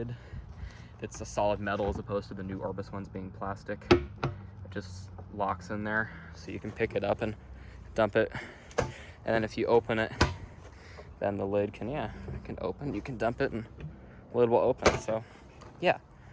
It's a solid metal as opposed to the new Orbis ones being plastic. It just locks in there, so you can pick it up and dump it. And then if you open it, then the lid can open. You can dump it and the lid will open. So yeah,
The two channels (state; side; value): identical; both; correlation 1.00